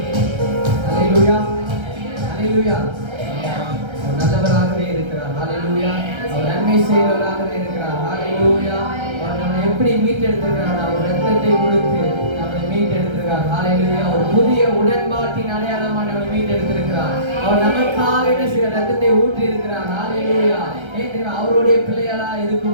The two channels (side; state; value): left; late; 1.3 ms